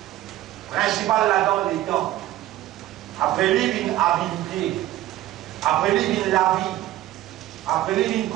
Principal là-dedans, les temps. Après lui, une habilité. Après lui vient la vie. Après lui vient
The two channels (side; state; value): left; quieter; 14.6 dB